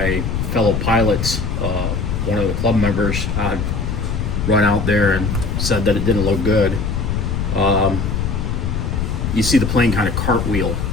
fellow pilots, one of the club members, had run out there and said that it didn't look good. You see the plane kind of cartwheel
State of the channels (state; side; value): noise; left; rumble, 1 dB below the sound